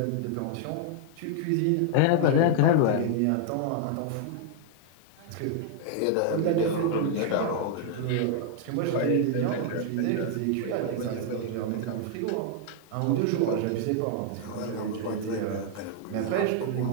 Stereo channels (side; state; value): both; different; correlation 0.00